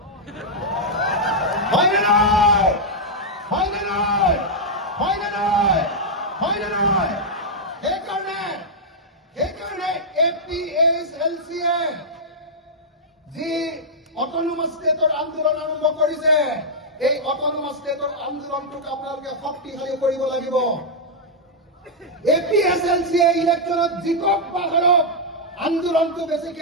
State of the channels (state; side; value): normal; both; correlation -0.05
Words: হয়নে নহয় হয়নে নহয় হয়নে নহয় হয়নে নহয় সেইকাৰণে APSLCয়ে যি অটোনমাস ষ্টেটৰ আন্দোলন আৰম্ভ কৰিছে এই অটোনমাস ষ্টেটৰ আন্দোলনটোক আপোনালোকে শক্তিশালী কৰিব লাগিব APSLCয়ে ইলেকশ্যনত জিকক বা হাৰক আন্দোলনটো